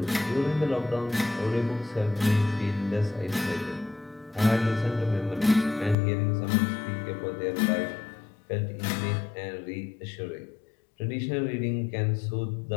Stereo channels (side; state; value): right; drops out; at 6.0 s